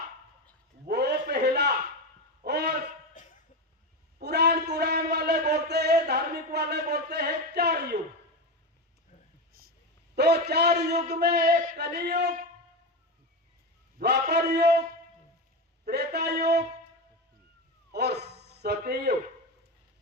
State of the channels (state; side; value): normal; both; correlation 0.18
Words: वो पहला। और पुराण वाले बोलते हैं, धार्मिक वाले बोलते हैं 4 युग। तो 4 युग में एक कलियुग, द्वापर युग, त्रेता युग और सतयुग।